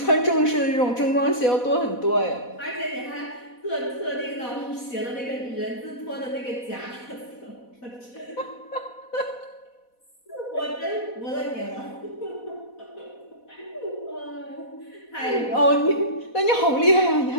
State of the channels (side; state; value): right; late; 4.1 ms